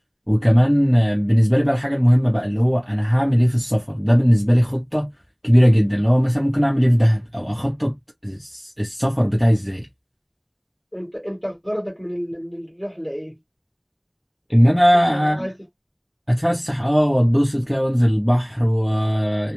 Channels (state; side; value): identical; both; correlation 1.00